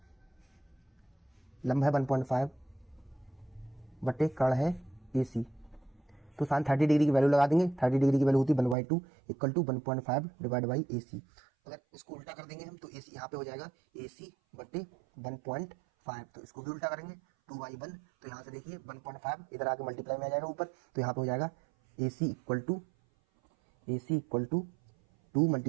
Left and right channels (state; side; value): drops out; left; at 8.8 s